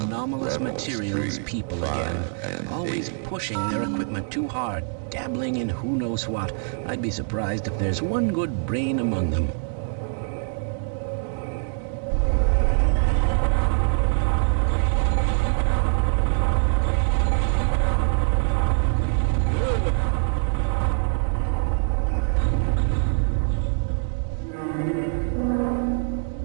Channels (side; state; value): left; silent; 63 dB below the other